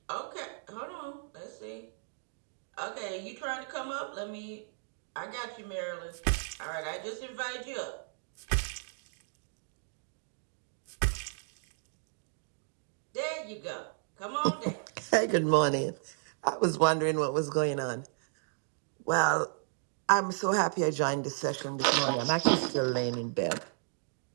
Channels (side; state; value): left; silent; digital silence